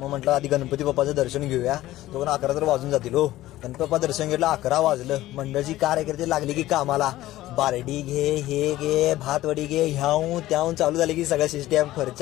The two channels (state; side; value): quieter; right; 15.6 dB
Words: म्हटलं आधी गणपती बाप्पाचं दर्शन घेऊया. तो पण 11 तर वाजून जातील. हो गणपती बाप्पा दर्शन घेतलं, 11 वाजलं. मंडळची कार्यकर्ते लागली की कामाला. बारडी घे, हे घे, भातवडी घे, ह्याहून त्याहून चालू झाली की सगळं सिस्टम.